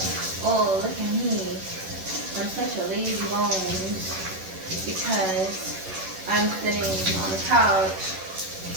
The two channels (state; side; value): late; left; 11 ms